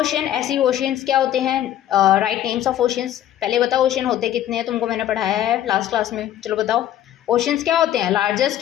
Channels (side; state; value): right; quieter; 11.8 dB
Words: ऐसी ओशंस क्या होते हैं? Write names of oceans. पहले बताओ ओशन होते कितने हैं, तुमको मैंने पढ़ाया है लास्ट क्लास में। चलो बताओ ओशंस क्या होते हैं?